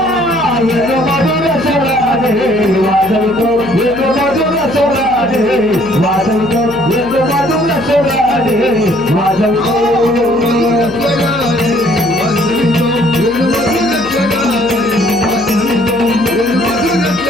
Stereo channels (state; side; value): noise; right; hum, 16 dB below the sound